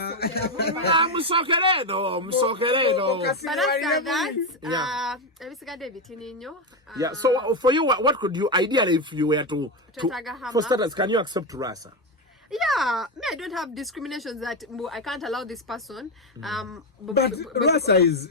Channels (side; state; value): both; normal; correlation 0.10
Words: But after that, Yeah, so for you, what could you, ideally, if you were to for starters, can you accept Luasa? yeah, me, I don't have discriminations that I can't allow this person. But Luasa is